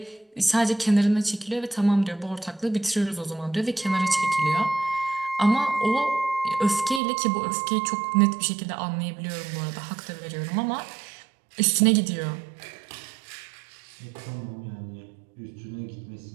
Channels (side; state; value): left; drops out; at 7.0 s